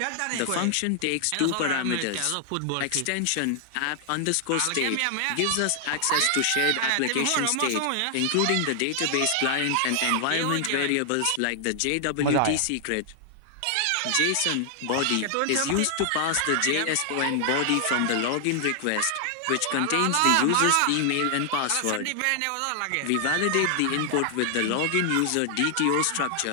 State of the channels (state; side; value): different; both; correlation 0.00